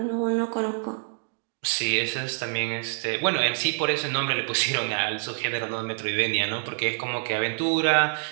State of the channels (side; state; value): left; silent; digital silence